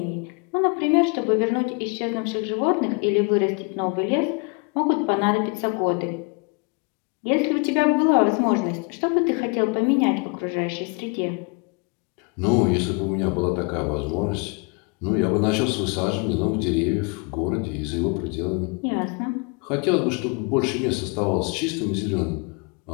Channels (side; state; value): right; quieter; 32.0 dB